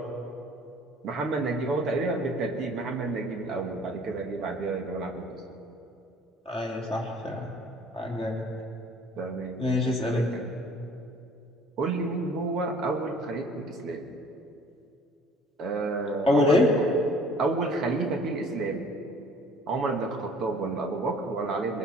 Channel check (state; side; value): normal; both; correlation 0.52